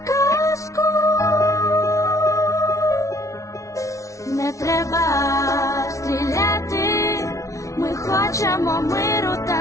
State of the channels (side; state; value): right; late; 0.15 ms